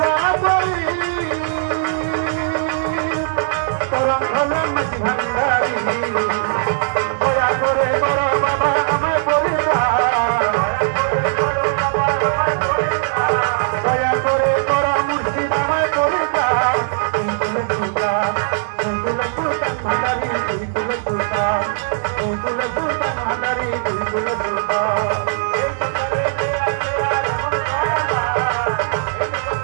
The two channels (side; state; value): left; silent; 57 dB below the other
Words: করি তরঙ্গনা মাঝি ভান্ডারি দয়া করে বড় বাবা আমায় পরিবার দয়া করে বড় মুর্শিদ আমায় পরিবার সুলতান ভান্ডারি সুলতান ভান্ডারি সুলতান